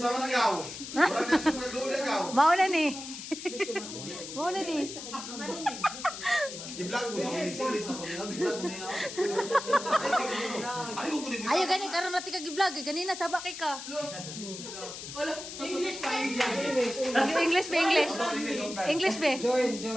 man agaw? Murag na sa mga doon agaw. Mauna ni. Mauna ni. Gi-vlog mo sa series na ko. Gi-vlog mo niya. Ay, ko kunin. Ayo gani karon natin kag-vlog ganina sabak kay ka. English ba English? English ba?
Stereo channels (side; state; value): left; noise; hiss, 10 dB below the sound